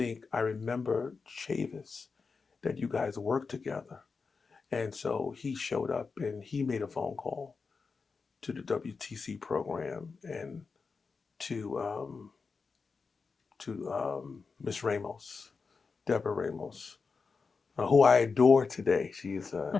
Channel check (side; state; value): right; quieter; 4.8 dB